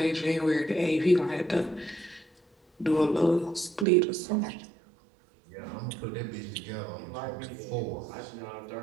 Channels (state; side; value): drops out; left; at 3.9 s